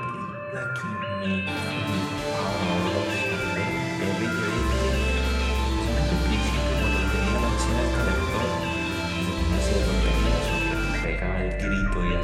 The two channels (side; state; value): both; identical; correlation 1.00